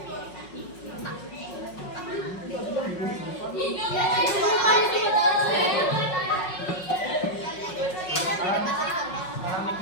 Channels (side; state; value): right; late; 5.5 ms